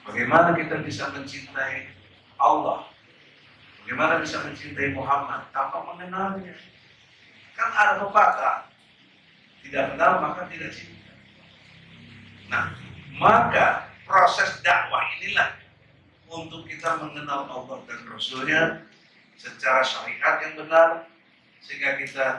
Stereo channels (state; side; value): identical; both; correlation 1.00